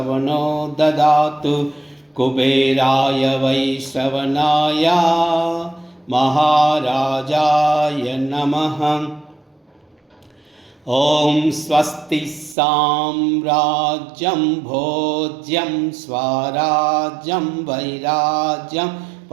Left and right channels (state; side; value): drops out; left; at 12.6 s